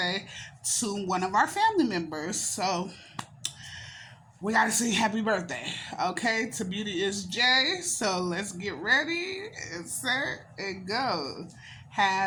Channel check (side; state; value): both; identical; correlation 1.00